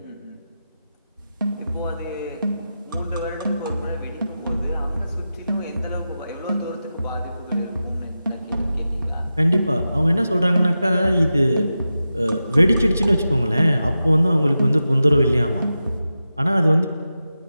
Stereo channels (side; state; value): both; inverted; correlation -0.92